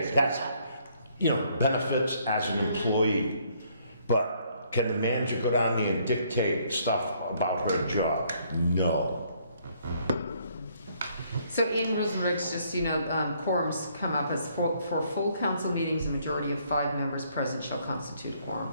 Okay, that's, benefits as an employee, but can the manager go down there and dictate stuff about her job? No. So in rules and regs, just, quorums come up as for full council meetings, a majority of 5 members present shall constitute a quorum.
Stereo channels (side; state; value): both; inverted; correlation -0.67